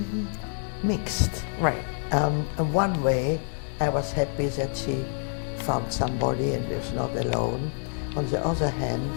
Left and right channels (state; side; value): silent; right; 60 dB below the other